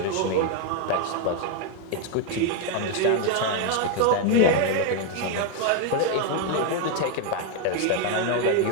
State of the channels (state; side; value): different; both; correlation 0.01